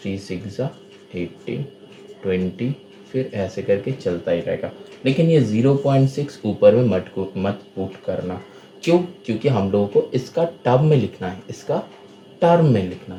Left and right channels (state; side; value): identical; both; correlation 1.00